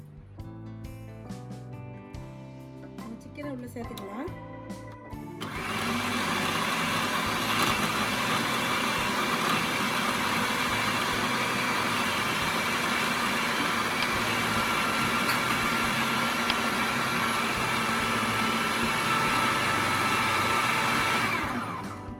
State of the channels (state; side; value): identical; both; correlation 1.00